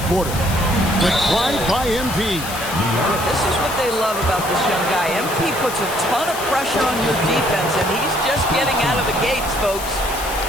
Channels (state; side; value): noise; left; hiss, 10 dB below the sound